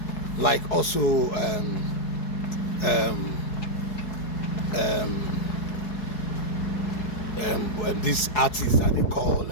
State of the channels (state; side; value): late; right; 4.7 ms